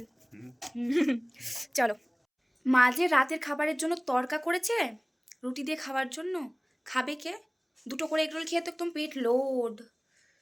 চলো মা যে রাতের খাবারের জন্য তড়কা করেছে রুটি দিয়ে খাওয়ার জন্য, খাবে কে? দুটো করে এগরোল খেয়ে তো একদম পেট লোড,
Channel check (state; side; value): identical; both; correlation 1.00